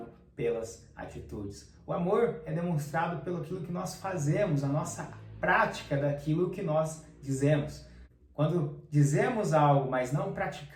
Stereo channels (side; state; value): both; identical; correlation 1.00